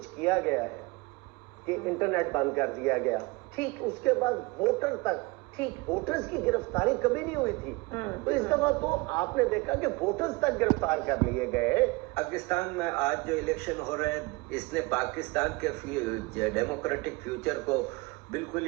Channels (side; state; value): left; quieter; 24.6 dB